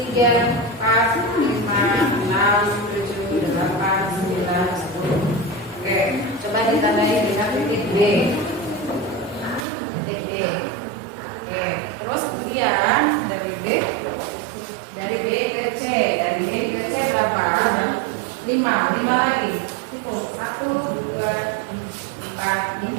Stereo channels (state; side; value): drops out; left; at 9.7 s